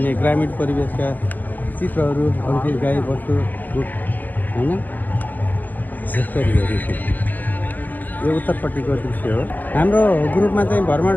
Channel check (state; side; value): late; right; 0.085 ms